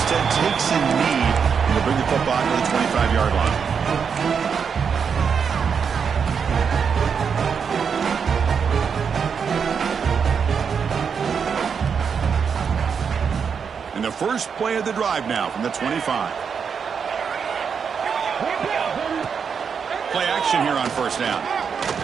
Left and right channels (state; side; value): quieter; left; 6.5 dB